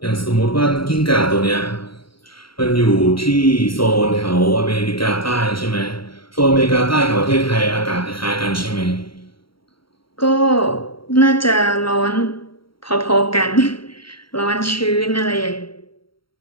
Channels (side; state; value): right; late; 0.74 ms